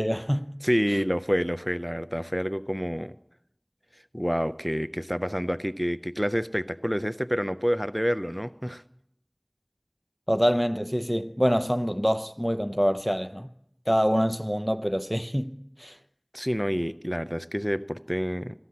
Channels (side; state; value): both; identical; correlation 1.00